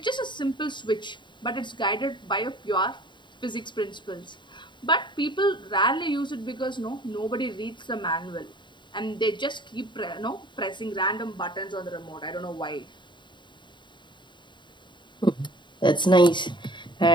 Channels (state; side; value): late; right; 0.23 ms